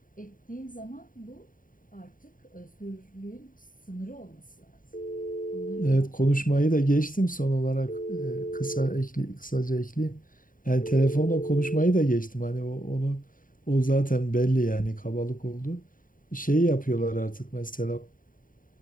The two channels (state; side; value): late; right; 0.40 ms